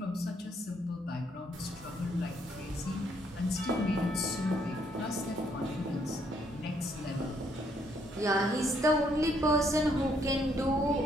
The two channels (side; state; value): both; normal; correlation 0.70